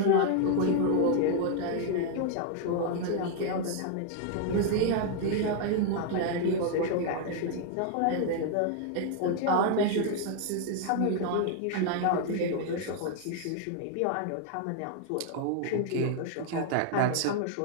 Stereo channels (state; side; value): different; both; correlation 0.00